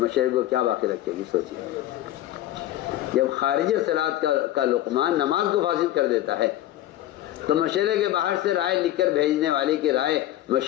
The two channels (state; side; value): quieter; right; 14.1 dB